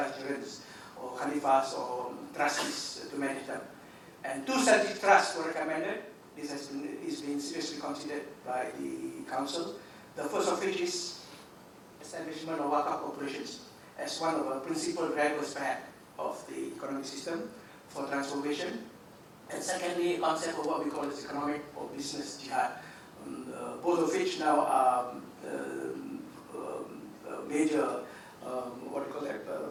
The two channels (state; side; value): identical; both; correlation 1.00